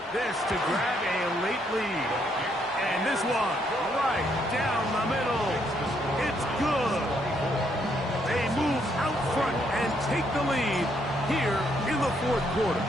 This to grab a late lead. And this one right down the middle. It's good. They move out front and take the lead here in the 4th quarter.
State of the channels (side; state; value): both; normal; correlation 0.73